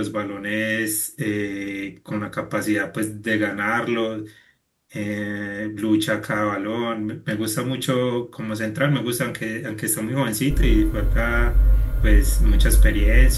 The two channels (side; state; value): both; identical; correlation 1.00